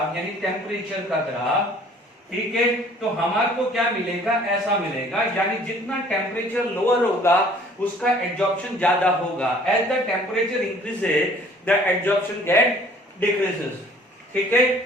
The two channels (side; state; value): both; normal; correlation 0.54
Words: यानी टेम्परेचर का ग्राफ, ठीक है, तो हमारे को क्या मिलेगा, ऐसा मिलेगा, यानी जितना टेम्परेचर लोअर होगा उसका एडजॉर्प्शन ज्यादा होगा. As the temperature increases the adsorption get decreases. ठीक है,